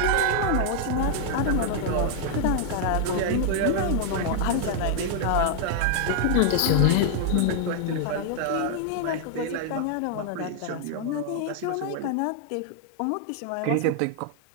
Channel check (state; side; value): different; both; correlation -0.01